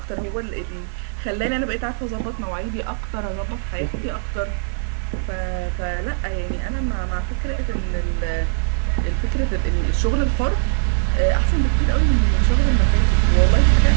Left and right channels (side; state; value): left; silent; digital silence